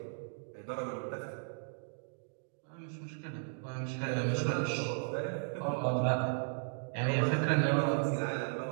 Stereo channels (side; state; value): left; silent; digital silence